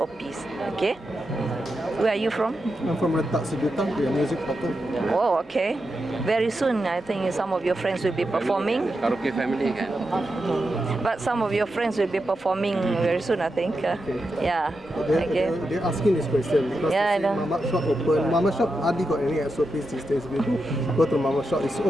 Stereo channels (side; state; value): both; normal; correlation 0.88